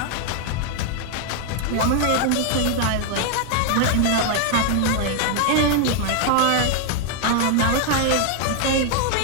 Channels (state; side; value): different; both; correlation 0.00